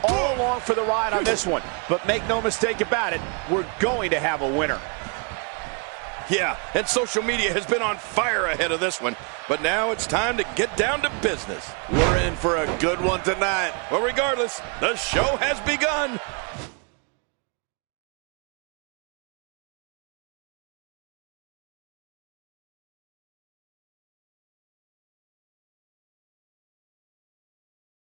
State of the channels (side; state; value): left; quieter; 36.4 dB